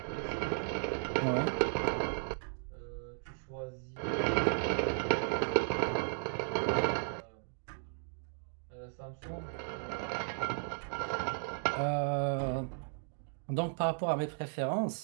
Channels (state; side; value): silent; left; digital silence